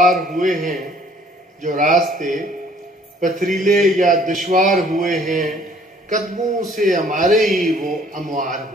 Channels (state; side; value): normal; both; correlation 0.58